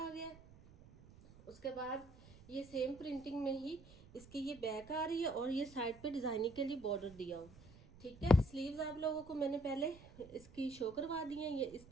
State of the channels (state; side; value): noise; right; rumble, 21 dB below the sound